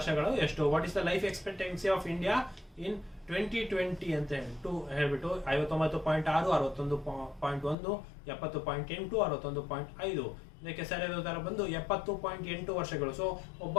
ಎಷ್ಟು? What is the life expectancy of India in 2020 ಅಂತ ಹೇಳ್ಬಿಟ್ಟು 59.6, 61.1, 70.8, 61.5. ಇದಕ್ಕೆ ಸರಿಯಾದ ಉತ್ತರ ಬಂದು 70.8 ವರ್ಷಗಳು. ಸೊ ಒಬ್ಬ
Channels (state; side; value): drops out; right; at 7.8 s